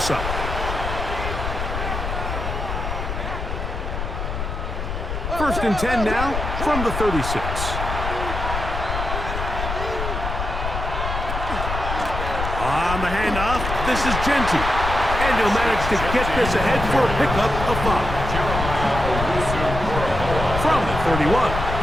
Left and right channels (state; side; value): noise; left; rumble, 4 dB below the sound